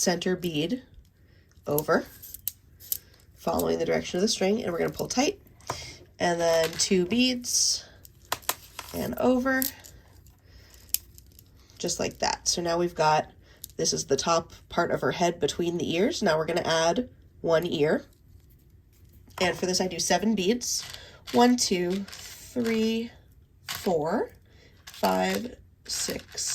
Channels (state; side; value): identical; both; correlation 1.00